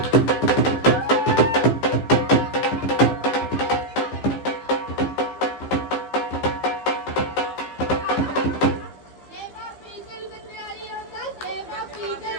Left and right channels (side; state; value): right; late; 15 ms